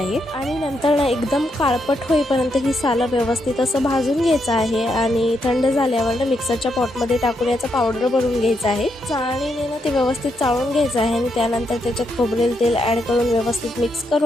आणि नंतर ना एकदम काळपट होईपर्यंत ही सालं व्यवस्थित असं भाजून घ्यायचं आहे आणि थंड झाल्यावर ना मिक्सरच्या पॉटमध्ये टाकून याचं पावडर बनवून घ्यायचं आहे. चाळणीने ना ते व्यवस्थित चाळून घ्यायचं आहे आणि त्यानंतर त्याच्यात खोबरेल तेल ऍड करून व्यवस्थित मिक्स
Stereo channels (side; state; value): both; normal; correlation 0.80